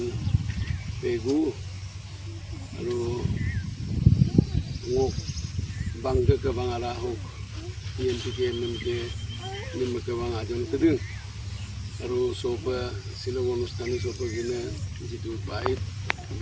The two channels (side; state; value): both; identical; correlation 1.00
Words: Pegu আৰু মোক বাংকে কেবাং আৰা হওক TNPকে MMK নিম কেবাং আজন কেদিন আৰু সব শিলং অনুষ্ঠানী সব কিনে যিটো বাইক